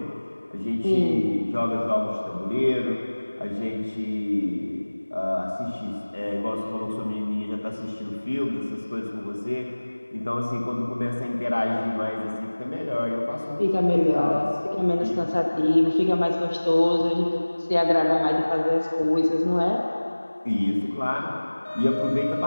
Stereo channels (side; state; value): both; inverted; correlation -1.00